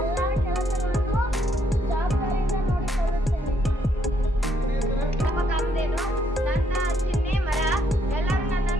ಕೆಲಸಗಳನ್ನು ಜವಾಬ್ದಾರಿಯಿಂದ ನೋಡಿಕೊಳ್ಳುತ್ತೇನೆ. ಕಾಮಧೇನು ನನ್ನ ಚಿಹ್ನೆ ಮರ. ಎಲ್ಲರೂ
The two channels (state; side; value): normal; both; correlation 0.72